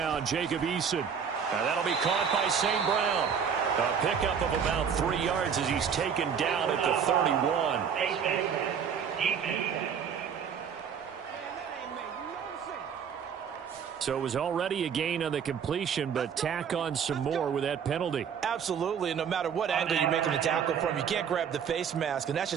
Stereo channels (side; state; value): left; quieter; 7.3 dB